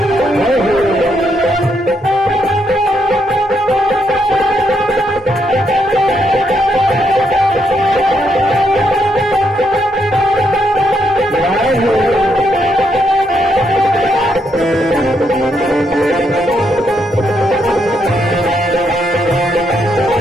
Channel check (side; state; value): both; normal; correlation 0.77